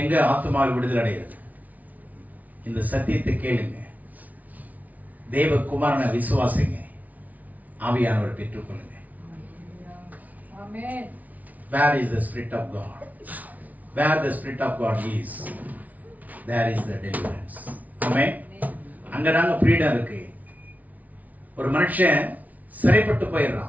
எங்க ஆத்துமாவில் விடுதலை அடைகிறது? இந்த சத்தியத்தை கேளுங்க, தேவகுமாரனை விசுவாசிங்க, ஆவியானவர் பெற்றுக்கொள்ளுங்க. Where is the Spirit of God? Where the Spirit of God is, there is the deliverance. Amen. அங்கதாங்க ஃப்ரீடம் இருக்கு. ஒரு மனுஷன் சிறைப்பட்டு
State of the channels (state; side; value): late; left; 0.074 ms